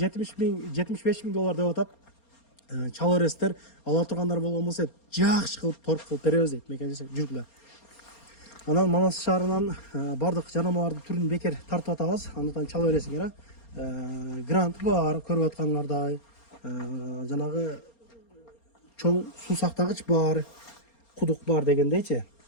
деп атат. Чала бересиздер, ала тургандар болгон болсо жакшы кылып торг кылып беребиз дейт мекендештер. Жүргүлө. Анан Манас шаарынан бардык жанамалардын түрүн бекер тартып атабыз. Андыктан чала бересиңер. Грант бар, көрүп аткандардай. Жанагы чоң суу сактагыч бар, кудук бар дегендейчи,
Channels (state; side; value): late; right; 4.3 ms